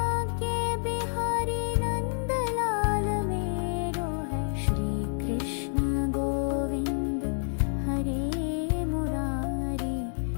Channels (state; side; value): silent; right; digital silence